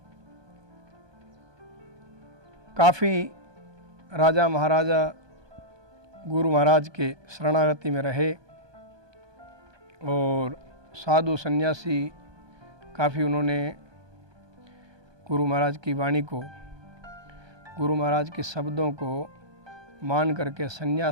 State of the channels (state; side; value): late; left; 1.2 ms